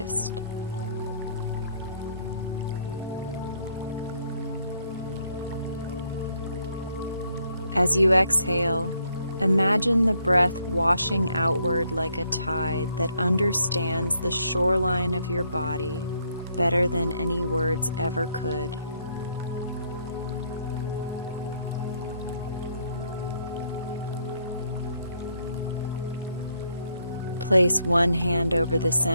As you exhale, imagine the breath washing outward like a tide that understands the shoreline of your body better than any words ever could. Place one hand over the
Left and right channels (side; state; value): both; inverted; correlation -0.71